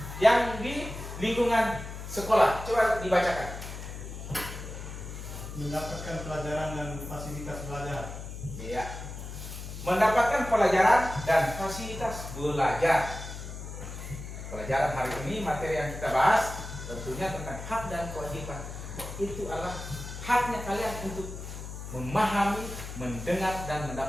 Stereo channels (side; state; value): left; noise; hum, 9 dB below the sound